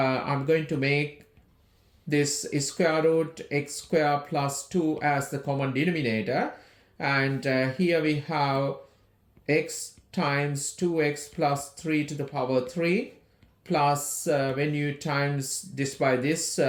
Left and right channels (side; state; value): both; identical; correlation 1.00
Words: going to make this square root x squared plus 2 as the common denominator. And here we have x times 2x plus 3 to the power 3. Plus, when you times this by this,